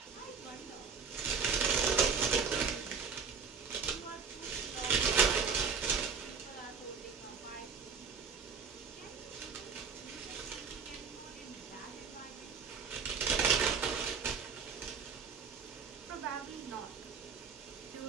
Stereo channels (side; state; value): left; quieter; 5.9 dB